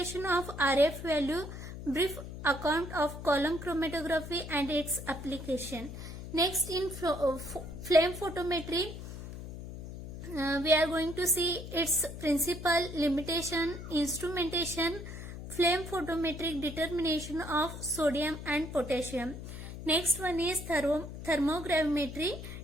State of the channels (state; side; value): noise; left; hum, 10 dB below the sound